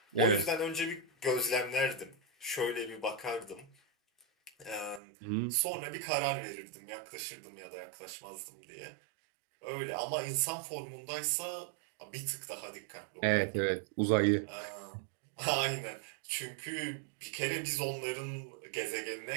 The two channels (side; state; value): left; drops out; at 5.0 s